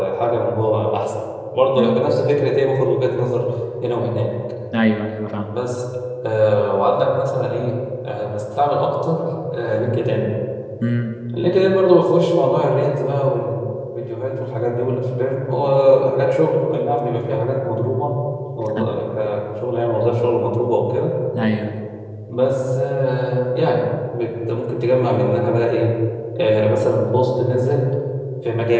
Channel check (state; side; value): identical; both; correlation 1.00